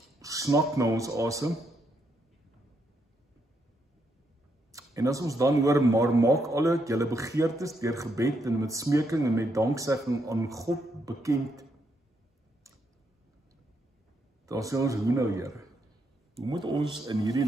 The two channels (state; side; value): normal; both; correlation 0.78